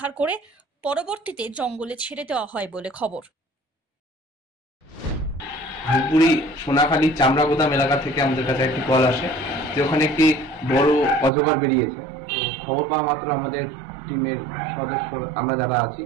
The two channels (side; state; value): left; drops out; at 11.3 s